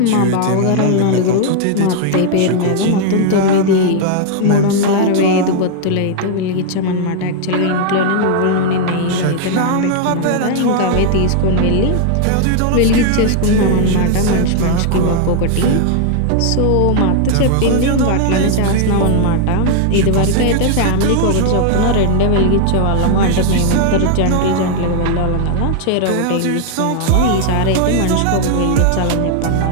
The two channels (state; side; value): different; both; correlation 0.00